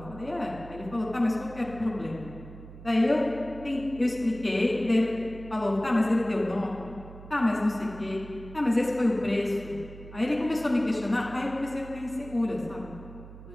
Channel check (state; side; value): noise; right; hum, 15 dB below the sound